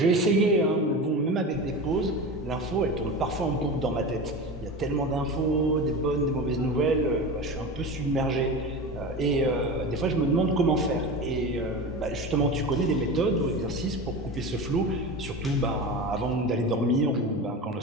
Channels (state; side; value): normal; both; correlation 0.27